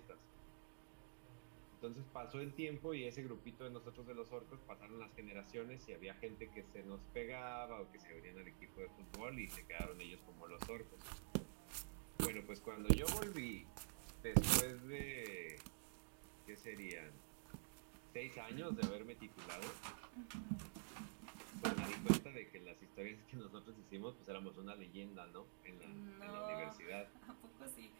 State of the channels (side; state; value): left; silent; digital silence